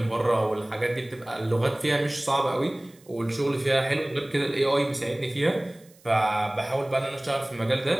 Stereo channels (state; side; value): noise; right; hiss, 28 dB below the sound